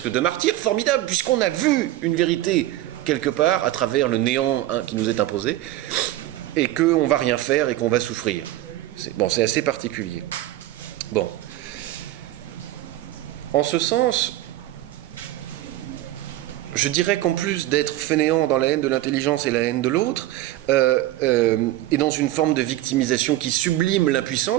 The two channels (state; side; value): quieter; left; 15.2 dB